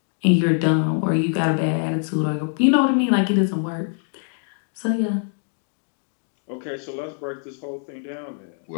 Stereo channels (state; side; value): silent; right; 63 dB below the other